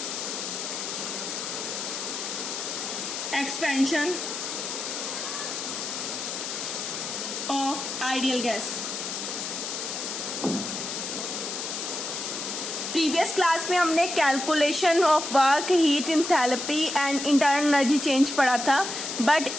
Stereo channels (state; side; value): noise; left; hiss, 5 dB below the sound